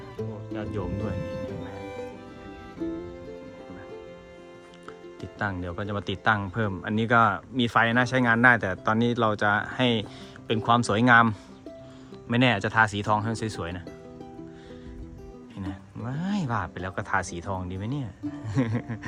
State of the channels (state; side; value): identical; both; correlation 1.00